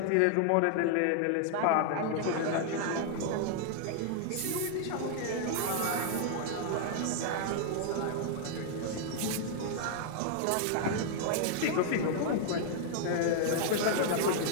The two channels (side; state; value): both; different; correlation 0.00